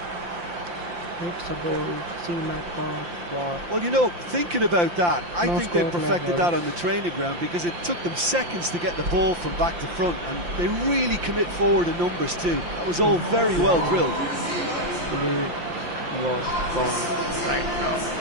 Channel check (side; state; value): left; late; 5.8 ms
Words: It's a goal. See my God. Well, you know, thinking about that, I think they perfected that on the training ground because it took them seconds to get the ball from back to front, and they really commit forward in numbers too. That was all very well drilled. Lead was gone right now.